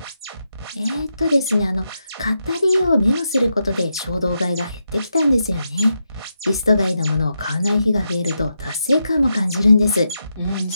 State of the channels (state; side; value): inverted; both; correlation -0.85